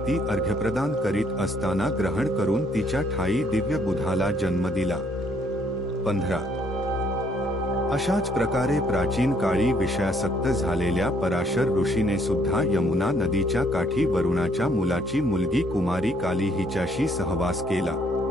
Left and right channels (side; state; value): both; normal; correlation 0.67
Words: ती अर्घ्यप्रदान करीत असताना ग्रहण करून तिच्या ठाई दिव्य बुधाला जन्म दिला. 15 अशाच प्रकारे प्राचीन काळी विषयासक्त झालेल्या पराशर ऋषीने सुद्धा यमुना नदीच्या काठी वरुणाच्या मुलाची मुलगी कुमारी काली हिच्याशी सहवास केला.